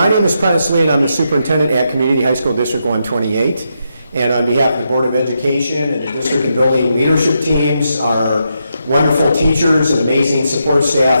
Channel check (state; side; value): inverted; both; correlation -0.83